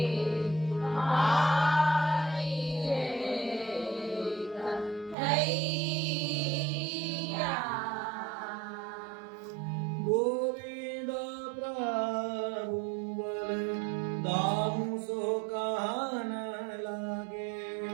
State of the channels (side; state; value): left; drops out; at 5.2 s